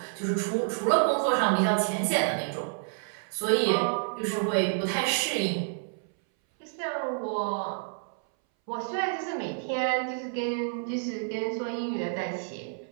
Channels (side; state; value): left; silent; 59 dB below the other